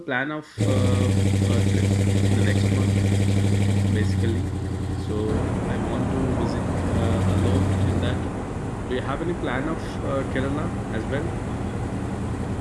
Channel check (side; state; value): both; identical; correlation 1.00